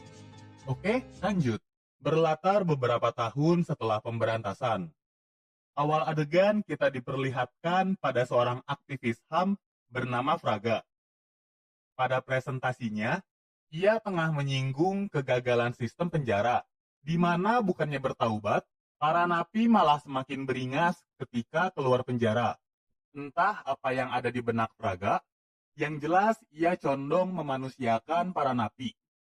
Oke, lanjut. Berlatar beberapa tahun setelah pemberantasan. Awal adegan kita diperlihatkan pada seorang aktivis HAM bernama Fraga. Pada presentasinya, ia tengah menyinggung kegagalan sistem penjara, di mana bukannya bertaubat, para napi malah semakin beringas ketika keluar penjara. Entah apa yang ada di benak Fraga, yang jelas ia condong memanusiakan para napi.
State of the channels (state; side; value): identical; both; correlation 1.00